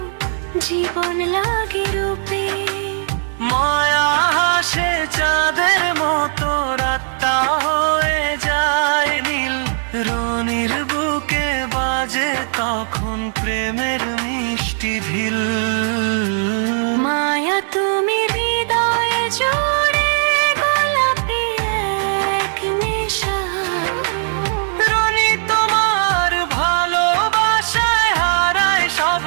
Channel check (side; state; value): left; silent; digital silence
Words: জীবন লাগে রূপে। মায়া হাসে চাঁদের মতো, রাতটা হয়ে যায় নীল। রনির বুকে বাজে তখন প্রেমের মিষ্টি ঢিল। মায়া তুমি হৃদয়ে জুড়ে গোলাপি এক নেশা। রনি তোমার ভালোবাসায় হারায় সব